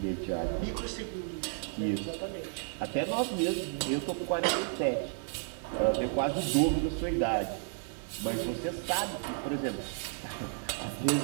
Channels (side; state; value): left; silent; digital silence